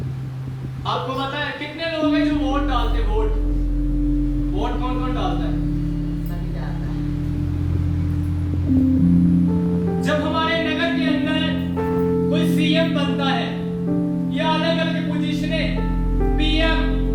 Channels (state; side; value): identical; both; correlation 1.00